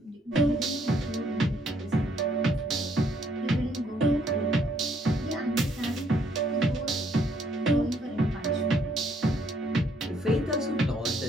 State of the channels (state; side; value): normal; both; correlation 0.68